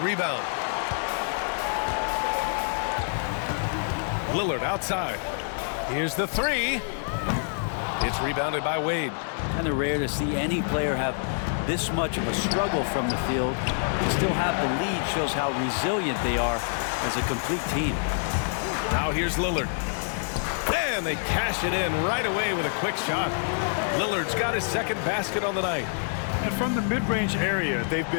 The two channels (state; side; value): silent; right; digital silence